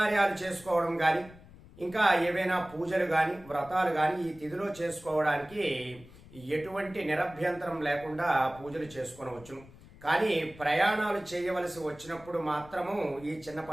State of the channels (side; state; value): left; noise; rumble, 21 dB below the sound